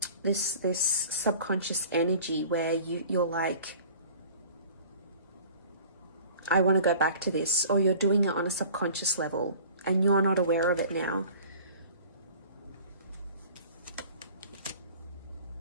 This subconscious energy where you're like, I want to go back to this, or you're doing it on a subconscious level and you're not aware of it now.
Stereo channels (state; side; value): inverted; both; correlation -0.45